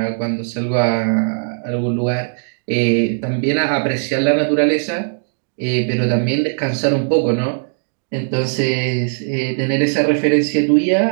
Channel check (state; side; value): silent; left; digital silence